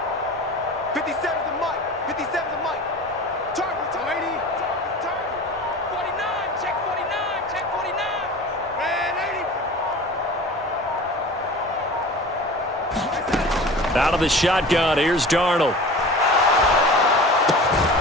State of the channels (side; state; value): both; normal; correlation 0.38